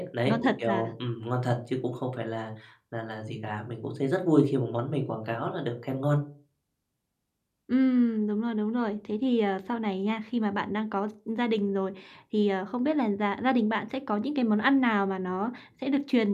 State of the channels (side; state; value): both; identical; correlation 1.00